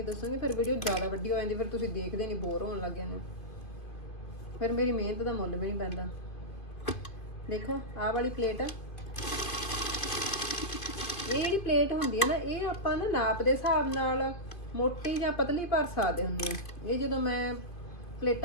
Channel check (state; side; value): late; right; 2.7 ms